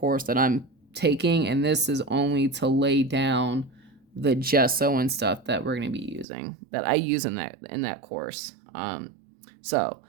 that I'm taking, and this is only to lay down the gesso and stuff that we're going to be using, that I use in that course. So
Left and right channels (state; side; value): drops out; left; at 6.2 s